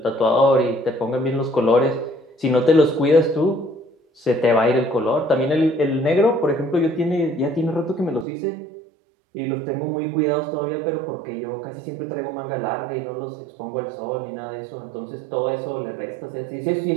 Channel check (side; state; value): left; drops out; at 8.2 s